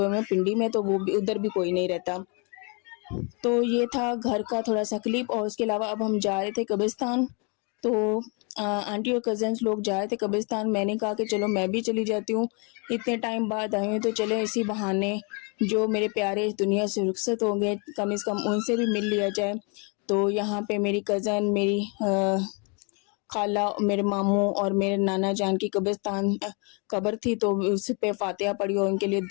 हैं पिंडी में, तो वो भी उधर भी कोई नहीं रहता। तो ये था घर का थोड़ा सा क्लिप। और उसके अलावा अब हम जा रहे थे कब्रिस्तान, तो आंटी और कज़न्स लोग जा रहे थे कब्रिस्तान। मैंने कहा कि चलो मैं भी चली जाती हूँ, इतने टाइम बाद आई हूँ तो चले इसी बहाने जो मेरे प्यारे इस दुनिया से रुखसत हो गए, कम से कम उनसे भी मिल लिया जाए। तो यहाँ पे मेरी कज़न, मेरी खाला, मेरे मामू और मेरे नाना जान की कब्र थी, तो उस पे फातिहा पढ़ी और उनके लिए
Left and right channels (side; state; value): right; quieter; 34.3 dB